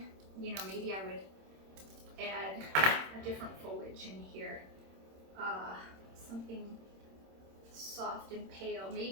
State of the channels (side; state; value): left; late; 26 ms